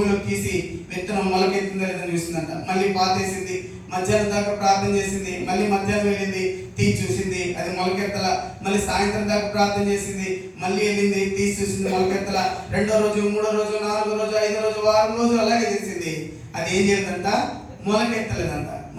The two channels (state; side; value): identical; both; correlation 1.00